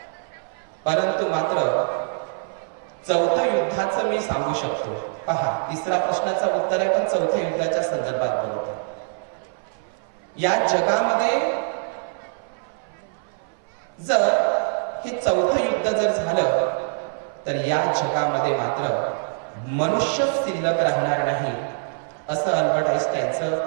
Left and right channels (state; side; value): silent; left; 57 dB below the other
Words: परंतु मात्र चौथं युद्धाचं मी सांगू शकतो. पहा, तिसरा प्रश्नाचं उत्तर आहे, पण चौथ्या युद्धाच्या संदर्भात बोलतो. या जगामध्ये जर हे चौथं युद्ध जर झालं, तर या जगामध्ये मात्र मनुष्य शिल्लक राहणार नाही, असं अल्बर्ट